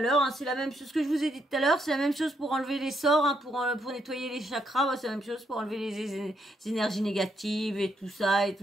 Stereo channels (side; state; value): both; normal; correlation 0.76